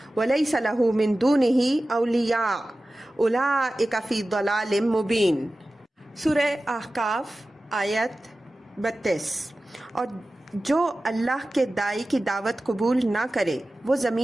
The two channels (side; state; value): both; normal; correlation 0.95